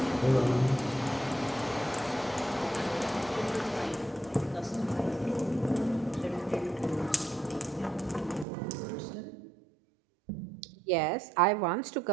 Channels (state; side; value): drops out; left; at 8.5 s